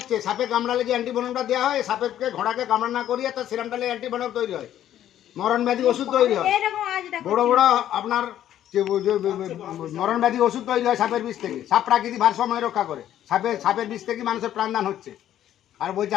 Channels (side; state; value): right; quieter; 11.6 dB